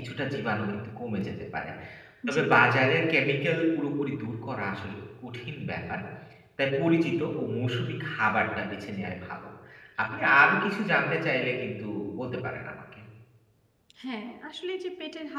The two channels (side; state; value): both; identical; correlation 1.00